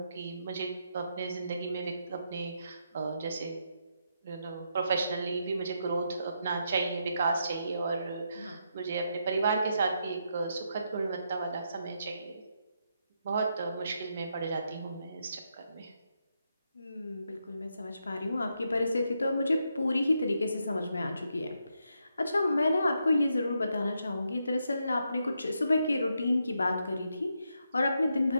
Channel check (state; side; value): inverted; both; correlation -0.81